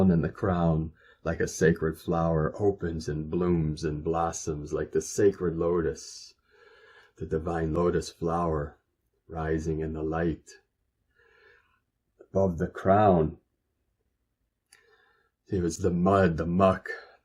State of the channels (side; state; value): both; identical; correlation 1.00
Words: and the crown, like a sacred flower, opens and blooms and blossoms like the sacred lotus, the divine lotus flower rising in the light. Above the crown, it was the mud, the muck,